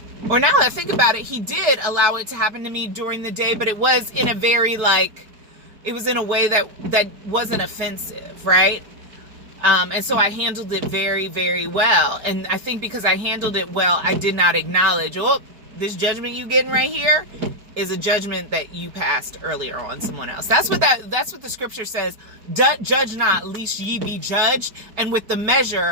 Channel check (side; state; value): left; late; 4.6 ms